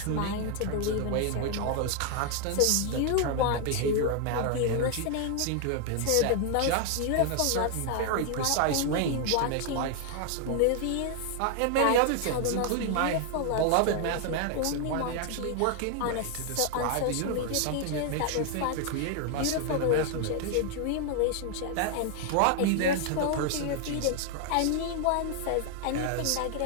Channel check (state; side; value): different; both; correlation 0.00